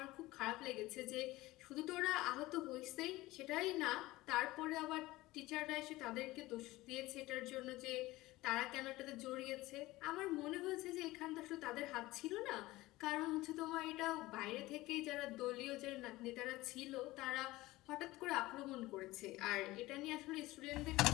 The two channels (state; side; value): quieter; right; 18.8 dB